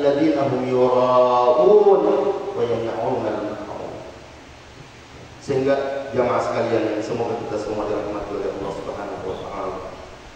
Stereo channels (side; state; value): both; identical; correlation 1.00